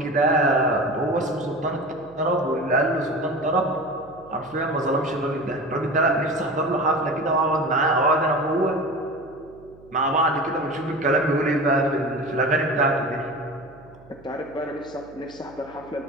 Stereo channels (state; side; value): noise; right; hum, 24 dB below the sound